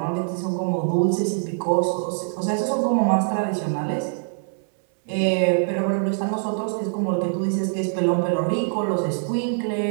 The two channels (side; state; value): left; silent; 63 dB below the other